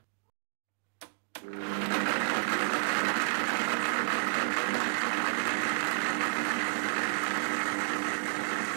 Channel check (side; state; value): left; silent; digital silence